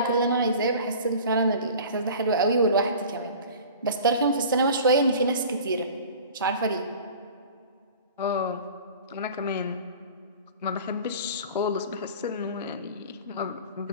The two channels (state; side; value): inverted; both; correlation -0.41